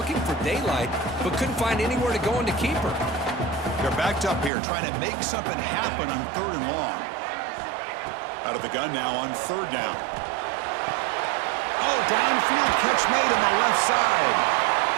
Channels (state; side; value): drops out; left; at 4.5 s